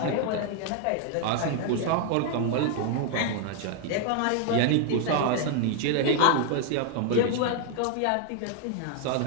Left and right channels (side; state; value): both; different; correlation 0.00